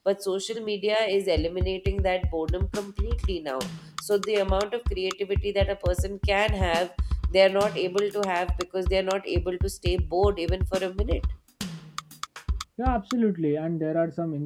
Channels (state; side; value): identical; both; correlation 1.00